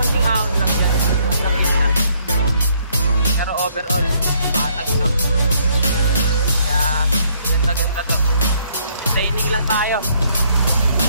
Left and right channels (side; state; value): both; inverted; correlation -0.67